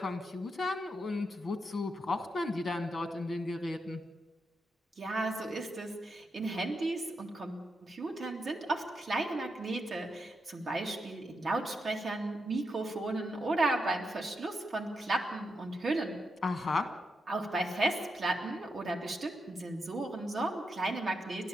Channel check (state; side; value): normal; both; correlation 0.84